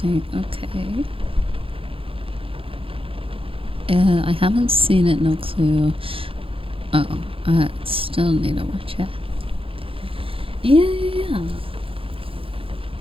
Okay. I haven't seen it. No clue. Oh, I still need to watch it. Yeah.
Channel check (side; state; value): left; late; 0.27 ms